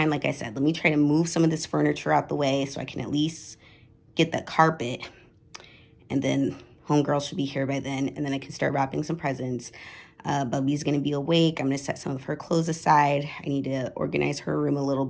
like I said, let me try to move some of this furniture out the way so I can at least get the carpet, and then homegirl should be here by then, and then I can start wrapping some presents. Bubby's gonna be awake. I'm gonna set some of her clothes aside. I need to organize her room a little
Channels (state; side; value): identical; both; correlation 1.00